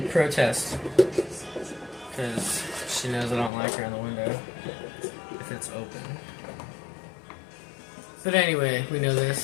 protest. Because she knows I don't like her in the window. If it's open. But anyway, we know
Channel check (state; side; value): drops out; right; at 3.5 s